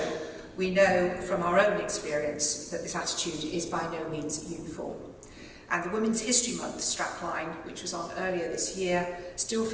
we know from our own experience that this attitude is by no means uniform. And the Women's History Month strapline, which was on earlier this year, still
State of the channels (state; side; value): identical; both; correlation 1.00